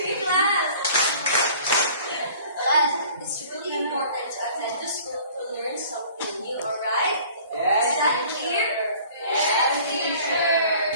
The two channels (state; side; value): inverted; both; correlation -0.50